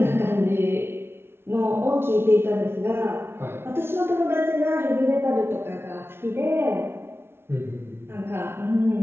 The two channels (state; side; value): late; left; 0.12 ms